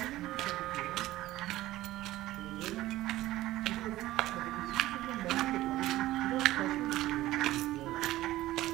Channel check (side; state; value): left; quieter; 16.1 dB